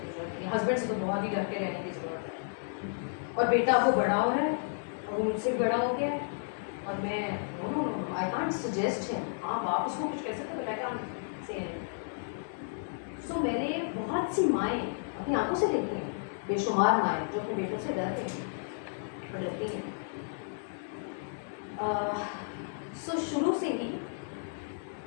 ضرورت نہیں, ہسبینڈ سے تو بہت ہی ڈر کے رہنے کی ضرورت ہے. اور بیٹا وہ بڑا ہو رہا ہے اور وہ مجھ سے بڑا ہو گیا ہے اور میں نو آئی کانٹ سجیسٹ ہم. ہاں باپ اس کو کچھ کہہ سکتے بٹ آئی کانٹ سے. سو میں نے بہت سی مائیں اپنی آنکھوں سے دیکھی ہیں, بے شمار مائیں جو اپنے بیٹوں سے ڈر رہی ہیں اور ڈرتی ہیں. سو شروع سے ہی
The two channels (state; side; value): silent; right; digital silence